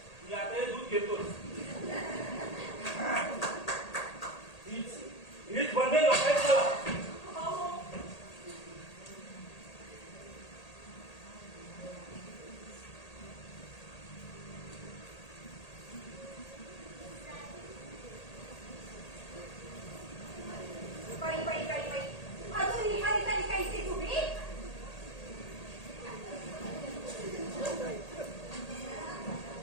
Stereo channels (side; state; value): right; late; 1.8 ms